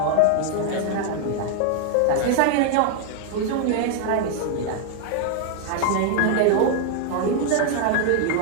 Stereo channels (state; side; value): different; both; correlation 0.00